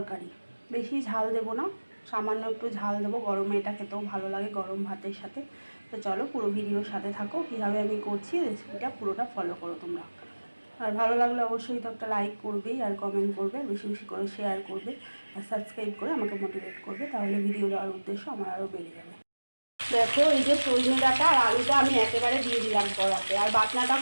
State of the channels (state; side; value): inverted; both; correlation -1.00